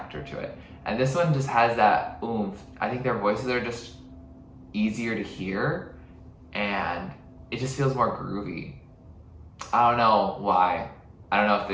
to it. And this one just has that oomph. I think their voices are just easier to hear, and it just feels more groovy. I don't know why. I don't know if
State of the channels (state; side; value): identical; both; correlation 1.00